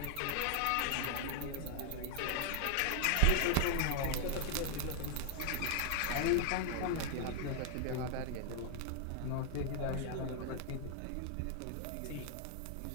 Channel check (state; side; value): different; both; correlation 0.00